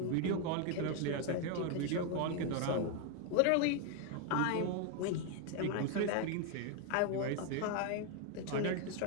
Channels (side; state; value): both; different; correlation 0.01